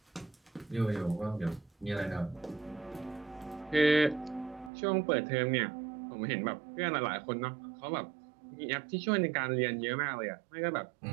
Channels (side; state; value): left; drops out; at 4.7 s